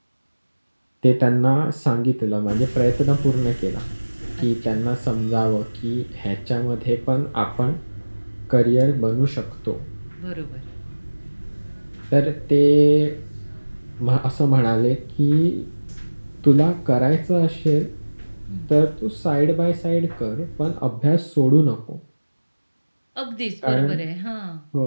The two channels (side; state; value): both; inverted; correlation -1.00